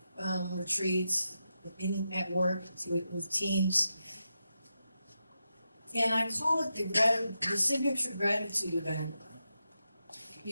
retreats, at work, with teams. And I call it the signature gratitude event.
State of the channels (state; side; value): inverted; both; correlation -0.88